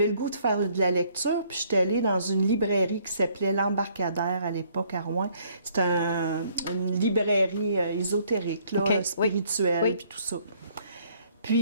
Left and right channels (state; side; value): inverted; both; correlation -0.64